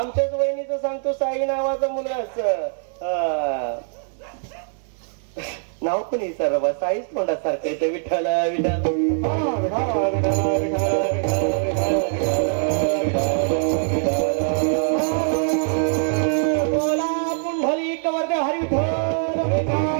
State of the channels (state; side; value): silent; left; 64 dB below the other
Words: वहिनीचं सांगतो, साई नावाचा मुलगा नाव पण विचार बा, साईच तोंडासारखं येतं. विठ्ठल बोला पुंडलिक वरदे हरी